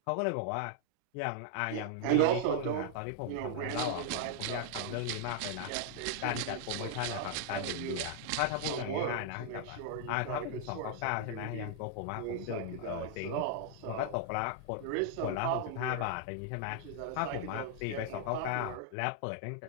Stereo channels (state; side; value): different; both; correlation -0.01